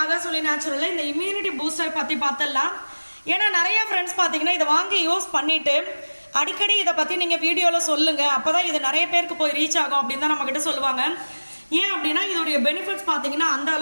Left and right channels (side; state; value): both; inverted; correlation -1.00